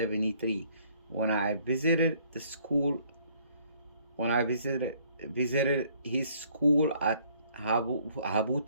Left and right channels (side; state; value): both; inverted; correlation -0.63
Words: when I visited the school when I visited his school at